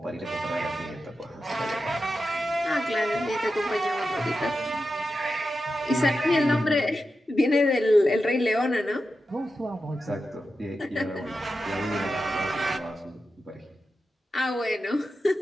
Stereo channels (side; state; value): both; normal; correlation 0.90